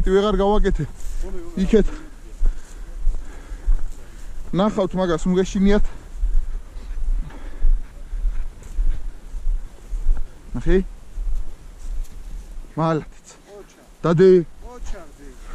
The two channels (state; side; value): identical; both; correlation 1.00